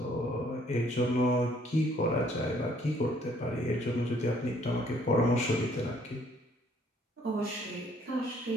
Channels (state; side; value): normal; both; correlation 0.63